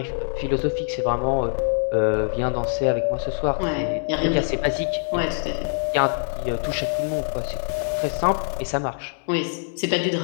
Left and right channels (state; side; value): silent; right; digital silence